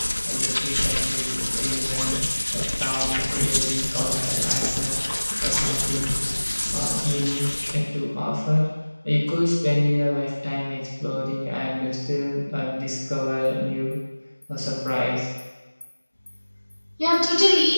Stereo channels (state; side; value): inverted; both; correlation -1.00